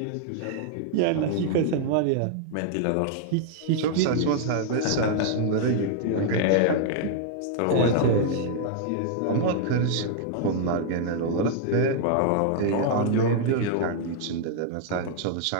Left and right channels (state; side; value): different; both; correlation -0.01